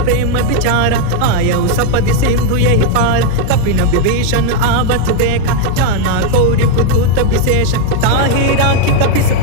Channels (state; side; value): different; both; correlation 0.00